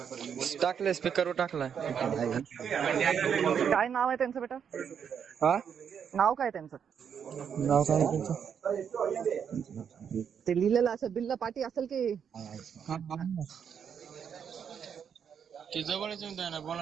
टाकलंय, स्पीकरवर टाकलाय. काय नाव आहे त्यांचं बेटा? हा, नाव काय त्यांचं? नाव काय त्यांचं? ते लिहिलेलं असेल, बिल्ला पाटी असेल की? ते जवळच येऊन द्या ना,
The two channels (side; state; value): left; quieter; 7.7 dB